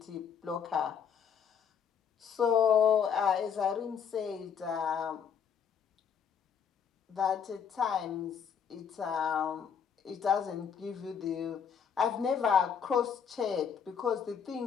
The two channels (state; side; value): quieter; right; 7.3 dB